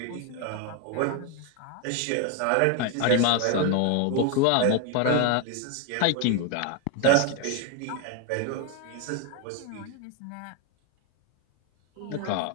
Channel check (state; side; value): different; both; correlation 0.01